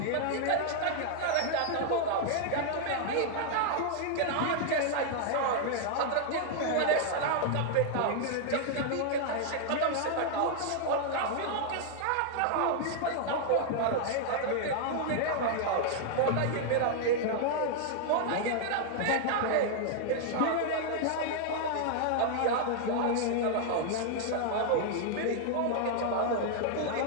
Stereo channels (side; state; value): both; different; correlation -0.01